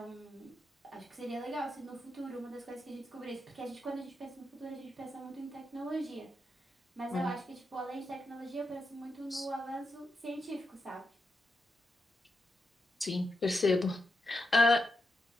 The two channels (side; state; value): both; normal; correlation 0.85